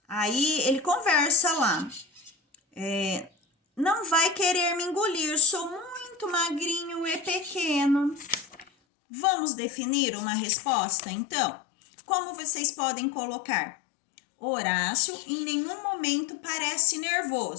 Aí, ele conversa lá. Não vai querer me engolir, sou muito magrinho e pequeno. Vamos definir uma resposta, então? Como vocês podem colocar? Horácio em nenhum momento parece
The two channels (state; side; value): drops out; right; at 8.7 s